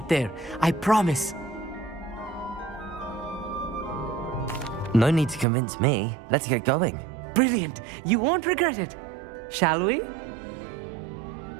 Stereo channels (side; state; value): left; drops out; at 5.5 s